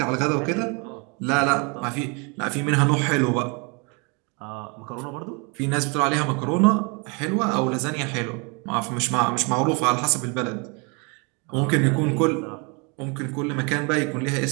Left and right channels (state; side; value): quieter; left; 32.3 dB